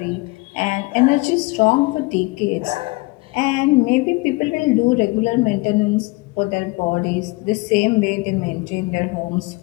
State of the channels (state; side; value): quieter; right; 24.1 dB